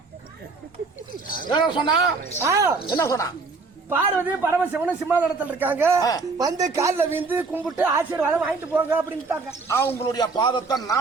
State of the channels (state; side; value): quieter; left; 4.1 dB